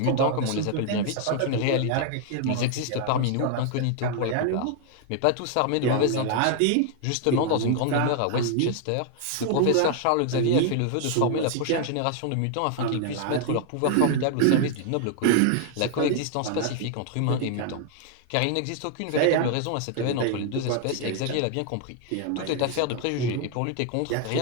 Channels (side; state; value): both; different; correlation 0.00